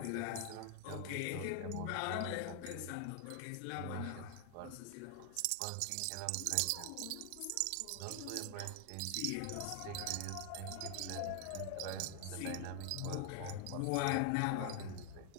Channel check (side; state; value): both; different; correlation 0.00